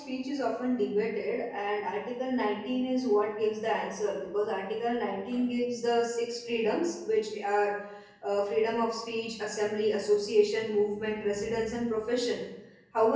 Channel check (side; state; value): both; identical; correlation 1.00